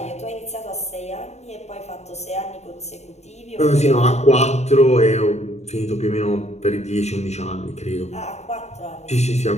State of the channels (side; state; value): right; late; 0.32 ms